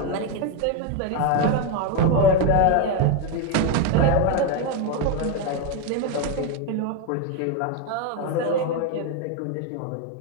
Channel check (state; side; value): different; both; correlation 0.02